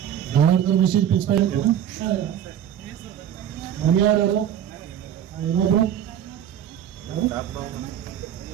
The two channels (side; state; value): left; quieter; 9.8 dB